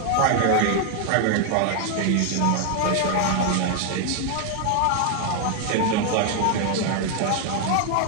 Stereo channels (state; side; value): different; both; correlation 0.00